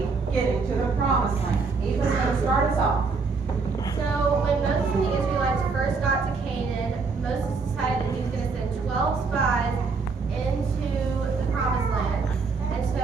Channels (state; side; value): quieter; left; 4.6 dB